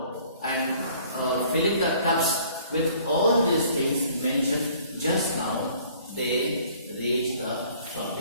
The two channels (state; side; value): inverted; both; correlation -0.56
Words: and filling the tubs with all these things mentioned just now, they reached the